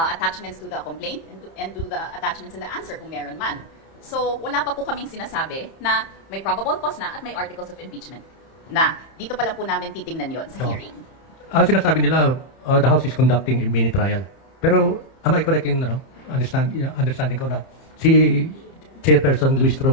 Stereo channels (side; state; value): right; late; 30 ms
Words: to the complaint and to the attachments in the answer kung meron man. So, wala pa po kaming sinasabi na may probable cause na at may articles of impeachment na dito pa lang po namin titingnan yon sa hearing. Ang sinasabi nila, the House is conducting a mini trial. Pero, am I correct in understanding ko na si Chairperson Luis Tro